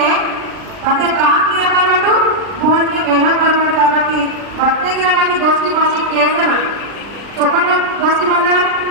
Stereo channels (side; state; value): left; late; 39 ms